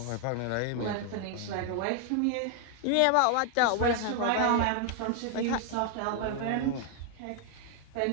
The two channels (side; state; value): both; different; correlation 0.00